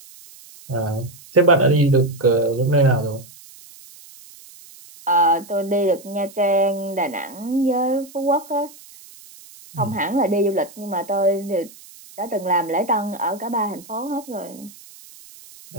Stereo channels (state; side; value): noise; right; hiss, 21 dB below the sound